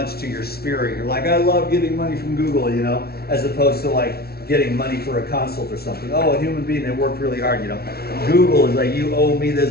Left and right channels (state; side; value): late; right; 0.45 ms